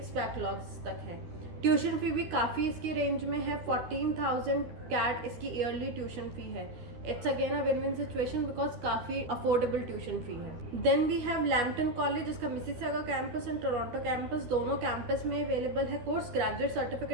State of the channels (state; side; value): late; left; 13 ms